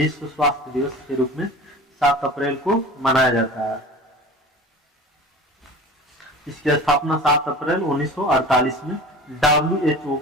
स्वास्थ्य दिवस के रूप में 7 अप्रैल को मनाया जाता है। इसकी स्थापना 7 अप्रैल 1948 में WHO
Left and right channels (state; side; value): normal; both; correlation 0.38